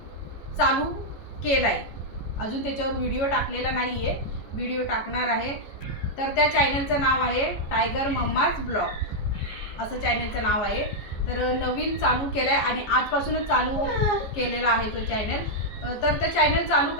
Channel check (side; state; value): right; late; 14 ms